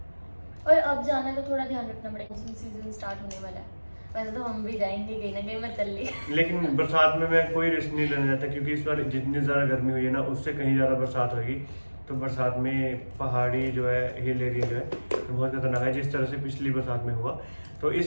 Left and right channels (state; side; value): inverted; both; correlation -1.00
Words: अब जाना है तो थोड़ा ध्यान रखना पड़ेगा, सीजन स्टार्ट होने वाला है। वैसे तो हम भी जाएंगे कहीं ना कहीं, मैं चल ली। लेकिन बरसात में मैं कोई रिस्क नहीं लेना चाहता, क्योंकि इस बार जितनी ज़्यादा गर्मी हुई है ना, उससे कहीं ज़्यादा बरसात होगी। तो बरसात में पहाड़ी जो है, हिल एरिया जो है, तो बहुत खतरनाक है, जिस तरह से पिछली बरसात में हुआ। तो